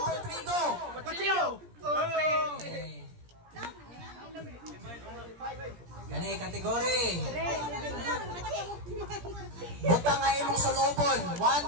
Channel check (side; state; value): left; late; 17 ms